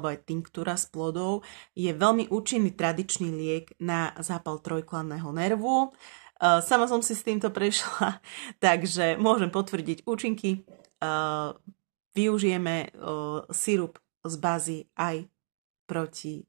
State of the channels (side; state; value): left; silent; digital silence